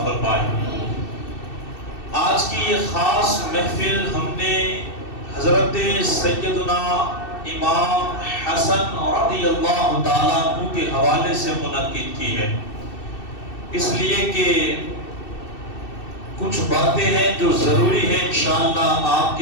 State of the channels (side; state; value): right; late; 2.6 ms